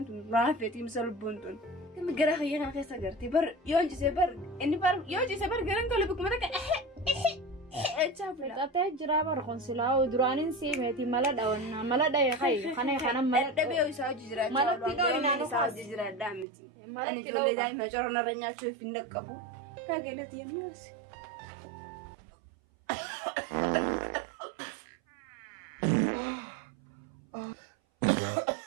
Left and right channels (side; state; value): left; drops out; at 16.4 s